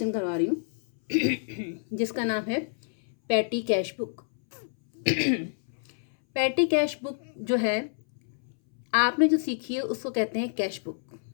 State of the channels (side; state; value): right; silent; 59 dB below the other